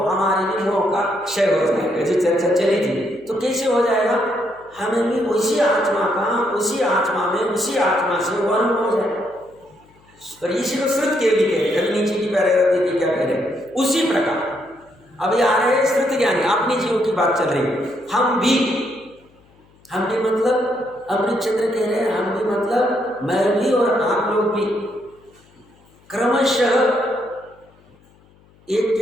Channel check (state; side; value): noise; left; hum, 30 dB below the sound